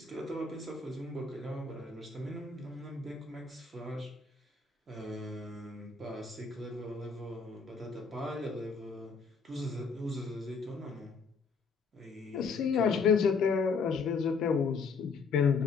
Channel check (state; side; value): quieter; right; 4.9 dB